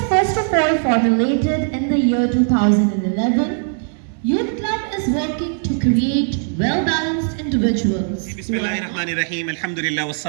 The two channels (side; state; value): left; silent; 61 dB below the other